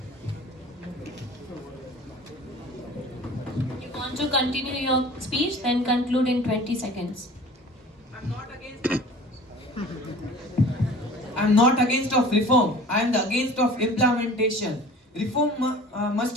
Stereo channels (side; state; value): both; normal; correlation 0.43